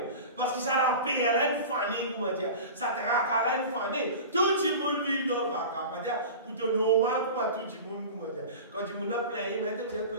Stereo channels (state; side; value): inverted; both; correlation -0.32